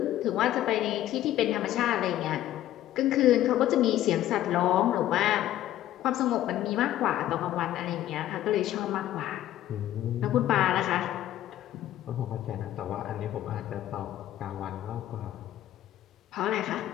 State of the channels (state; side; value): quieter; right; 13.1 dB